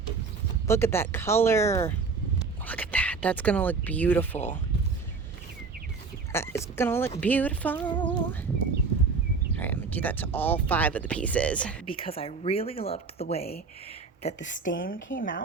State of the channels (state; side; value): quieter; left; 4.6 dB